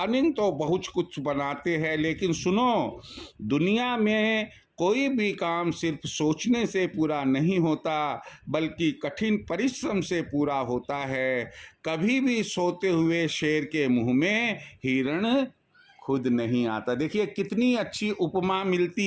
तो बहुत कुछ बनाते हैं, लेकिन सुनो, दुनिया में कोई भी काम सिर्फ सोचने से पूरा नहीं होता, बल्कि कठिन परिश्रम से पूरा होता है। कभी भी सोते हुए शेर के मुंह में हिरण खुद नहीं आता। देखिए कितनी अच्छी उपमा मिलती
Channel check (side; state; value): both; identical; correlation 1.00